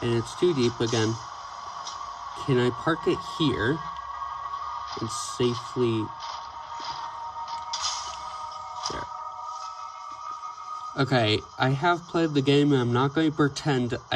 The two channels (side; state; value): both; identical; correlation 1.00